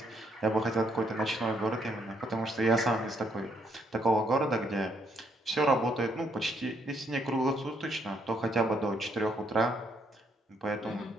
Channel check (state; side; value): normal; both; correlation 0.73